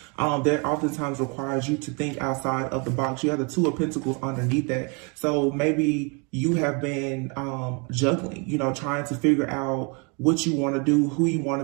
That oftentimes requires you to think outside of the box. You have the Two of Pentacles underneath that. So maybe you have been juggling, trying to figure out what you want to do, who you want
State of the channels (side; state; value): left; quieter; 33.3 dB